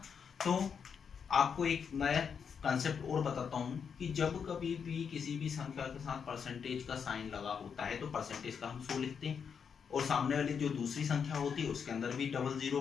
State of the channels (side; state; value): right; quieter; 6.7 dB